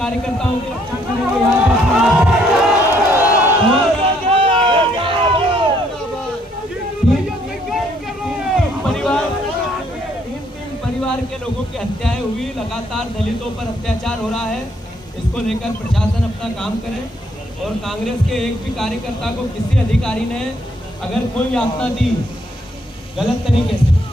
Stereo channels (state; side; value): normal; both; correlation 0.68